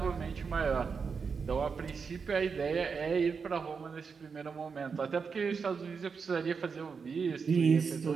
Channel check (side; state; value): left; quieter; 5.6 dB